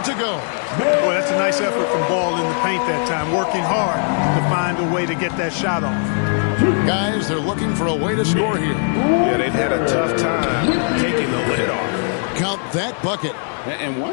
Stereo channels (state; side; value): silent; right; 55 dB below the other